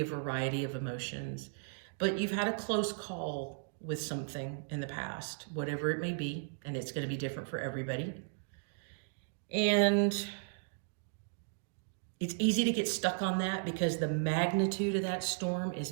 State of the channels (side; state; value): left; silent; digital silence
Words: a variety of emotions, but you've had a close call with something in the past, whatever it may be, and it's going to be different for everybody. And it's easy to get stuck on that because the magnitude of that storm